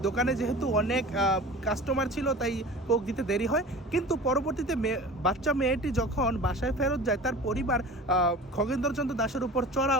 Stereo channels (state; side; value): normal; both; correlation 0.38